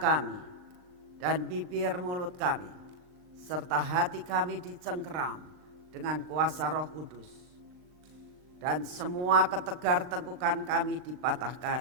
dan bibir mulut kami, serta hati kami dicengkeram dengan kuasa Roh Kudus, dan semua ketegar tengkukan kami dipatahkan,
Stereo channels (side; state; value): left; late; 39 ms